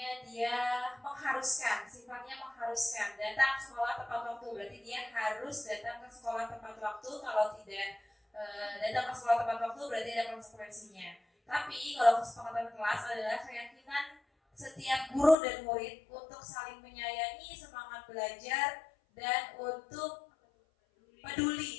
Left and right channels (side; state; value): right; drops out; at 15.4 s